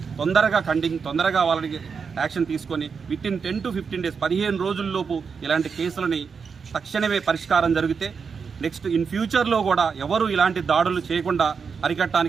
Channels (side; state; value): left; quieter; 5.8 dB